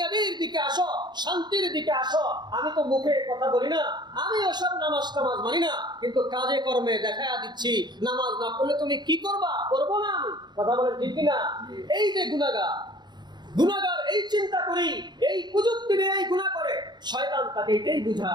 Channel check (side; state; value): left; late; 0.21 ms